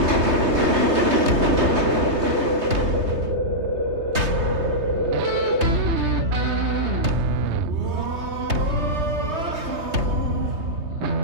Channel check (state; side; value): late; left; 3.2 ms